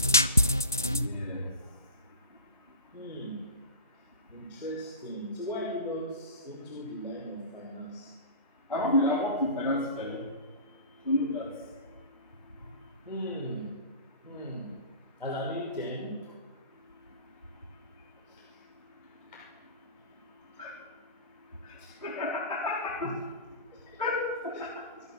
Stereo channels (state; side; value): inverted; both; correlation -0.33